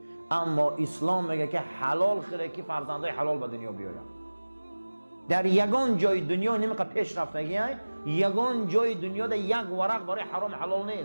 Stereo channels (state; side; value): inverted; both; correlation -1.00